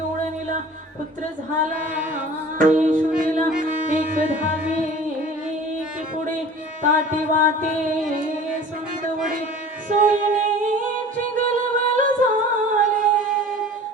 पुत्र झाला यशोदेला एक धावे की पुढे ताटी वाटे संतवडे सोयीची गलबल झाले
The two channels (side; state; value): both; normal; correlation 0.44